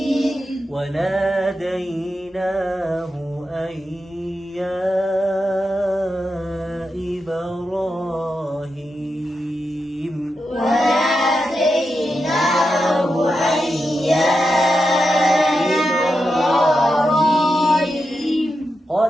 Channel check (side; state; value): both; normal; correlation 0.88